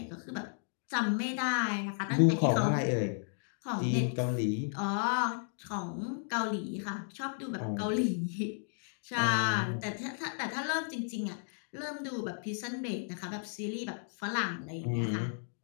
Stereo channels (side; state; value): right; silent; digital silence